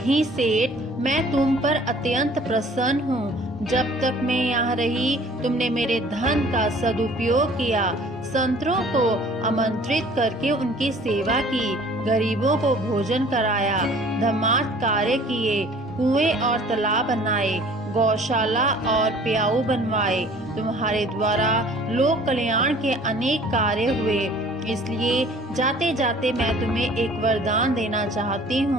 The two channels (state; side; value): normal; both; correlation 0.51